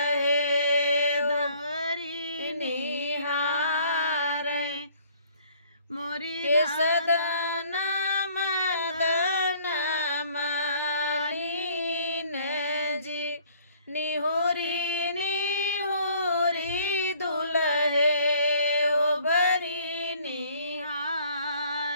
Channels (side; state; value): both; inverted; correlation -0.58